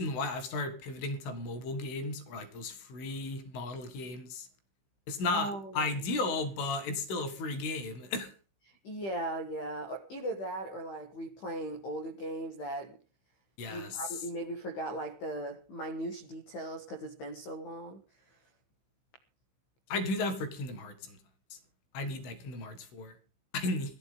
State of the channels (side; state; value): right; late; 16 ms